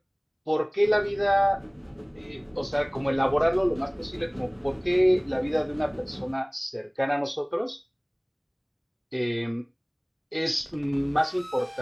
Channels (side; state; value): both; identical; correlation 1.00